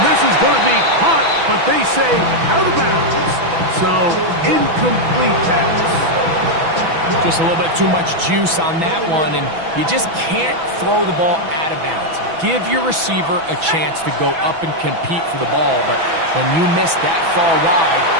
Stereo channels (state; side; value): late; left; 6.1 ms